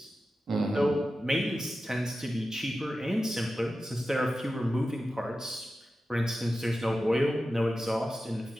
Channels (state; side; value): normal; both; correlation 0.93